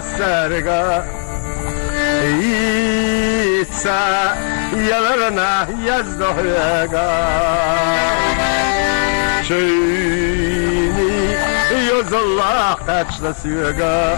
يتسا يلرنا يزدهيقا شيني يوز الله قاتشنا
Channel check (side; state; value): right; silent; 67 dB below the other